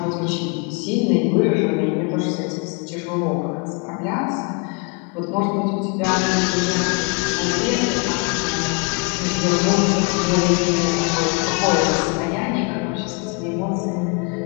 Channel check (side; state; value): right; quieter; 33.9 dB